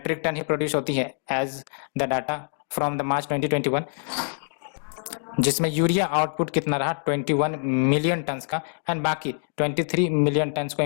टन ही प्रोड्यूस होती है as the data from the March 2021, जिसमें यूरिया आउटपुट कितना रहा 21 मिलियन टन्स का, एंड बाकी 23 मिलियन टन्स को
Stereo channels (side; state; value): right; silent; digital silence